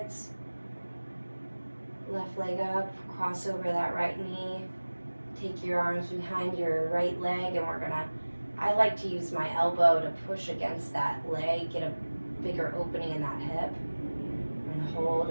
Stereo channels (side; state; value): both; inverted; correlation -1.00